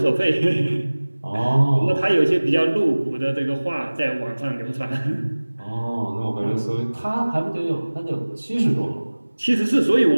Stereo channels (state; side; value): inverted; both; correlation -1.00